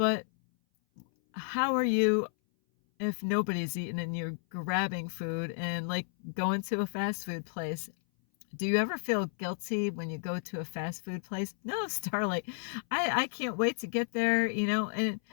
how are you if nobody's eating and you're grabbing food and like going to a fast food place? Do you ever feel guilty when you go to a fast food place? No, Starlight. I can't wait to get there, and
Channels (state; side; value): silent; right; 56 dB below the other